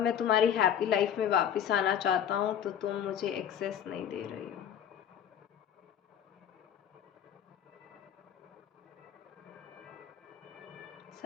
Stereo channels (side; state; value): right; quieter; 9.4 dB